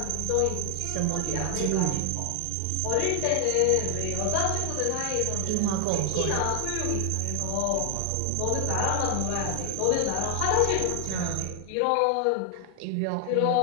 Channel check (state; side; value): different; both; correlation 0.00